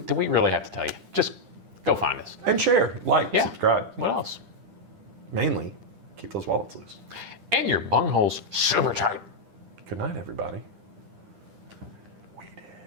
we really have to tell you? Just go find us. And share, like, Yeah. subscribe. What else? Mainly, keep those wallets loose. And your bungholes super tight. Good night, everybody.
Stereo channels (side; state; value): left; late; 10 ms